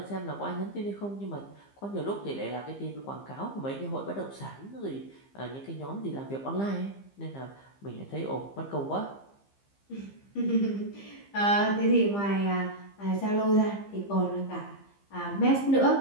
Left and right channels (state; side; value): late; right; 15 ms